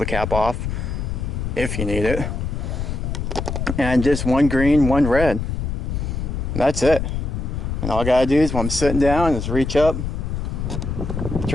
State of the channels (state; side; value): noise; left; rumble, 3 dB below the sound